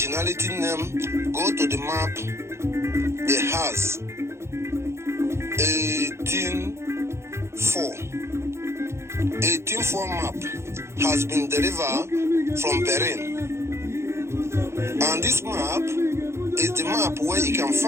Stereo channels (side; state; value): left; late; 0.13 ms